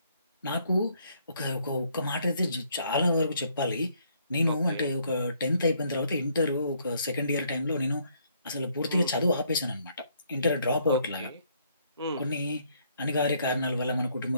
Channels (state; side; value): inverted; both; correlation -0.68